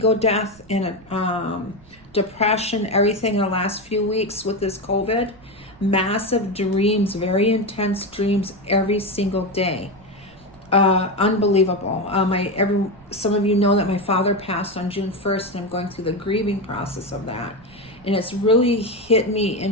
death and a depression, everything in the last few weeks with this COVID. Massive dreams, very intense dreams every single day. Unbelievable. Some of you know that my father passed on June 1st, and I'm going through the grieving process of that. And it's really hit me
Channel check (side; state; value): right; noise; rumble, 25 dB below the sound